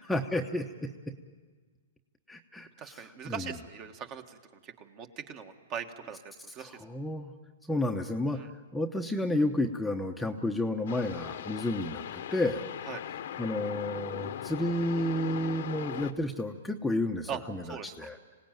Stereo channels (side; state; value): both; normal; correlation 0.66